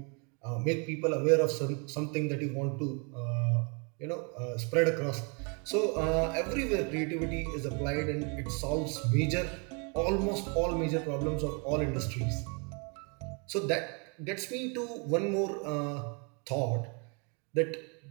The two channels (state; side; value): quieter; left; 34.7 dB